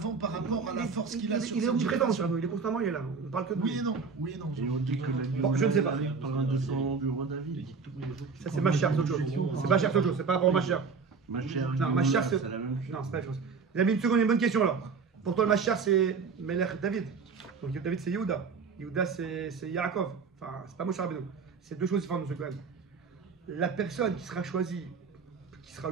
par rapport à la force qu'il a sur Il est cette omniprésent, génération. Moshe Rabbeinu. Il est constamment, il est là. On ne parle que de Oui lui. et non, oui et non. Et on dit que la Bon, je ne sais pas. par un de son du roi David. Ça, c'est ma chère, c'est autre chose. C'est pas cher, c'est autre chose. C'est pas rapport à ma chère. Ma chère Non, ma chère, c'est la même chose. Non, c'est pas la même chose. Les amis, une seconde, une bonne question alors. Pour toi, le Machar, c'est Melech David. Donc David, c'est Yehuda. Yehuda, c'est Yaakov. Enfin, c'est pas Moshe Rabbeinu. C'est 2 choses différentes, monsieur Cohen. La personne qui sera choisie, qui sera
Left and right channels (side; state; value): left; quieter; 5.2 dB